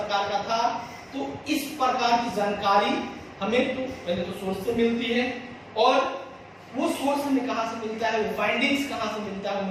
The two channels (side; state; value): both; identical; correlation 1.00